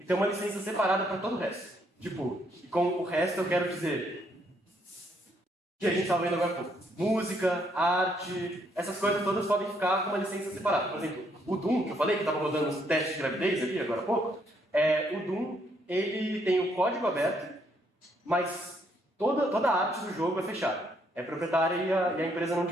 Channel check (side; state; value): both; normal; correlation 0.71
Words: ter uma licença separada para todo o resto. Tipo, e com o resto eu quero dizer que a gente estava vendo agora há pouco. Música, arte, essas coisas todas podem ficar com uma licença separada. Por exemplo, o Doom, que eu falei que estava rodando uns testes de gravidez ali agora há pouco, o Doom, ele tem o código aberto, mas toda a arte do jogo é fechada. É proprietária e a empresa não